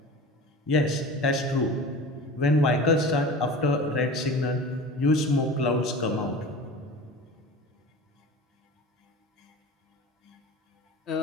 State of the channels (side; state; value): both; normal; correlation 0.36